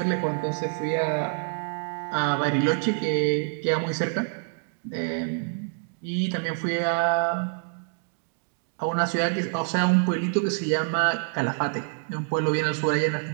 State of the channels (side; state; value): left; silent; 57 dB below the other